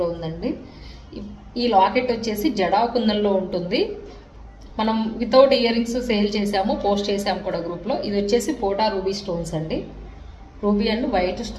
ఉందండి. ఈ లాకెట్ వచ్చేసి జడా కుందన్లో ఉంటుంది. మనం వితౌట్ ఇయర్ రింగ్స్ సేల్ చేసాము, పోస్ట్ చేసాము కూడా గ్రూప్లో. ఇది వచ్చేసి పోటా రూబీ స్టోన్స్ అండి. రూబీ అండ్ వైట్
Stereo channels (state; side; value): identical; both; correlation 1.00